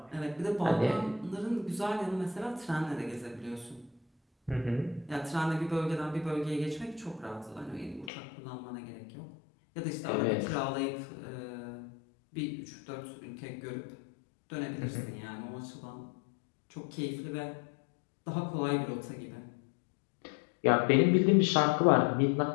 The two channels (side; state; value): right; drops out; at 8.1 s